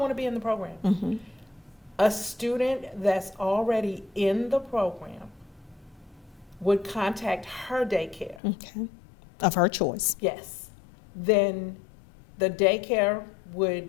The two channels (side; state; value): right; drops out; at 8.4 s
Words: to be in the program. A student that's already in the program would contact her daycare. Okay. Of her choice. Yes. Then the daycare would